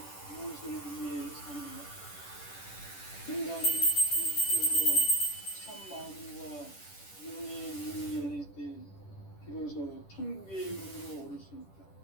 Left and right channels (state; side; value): late; right; 10 ms